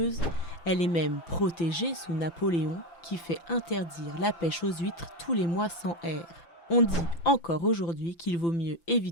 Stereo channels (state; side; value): late; right; 5.9 ms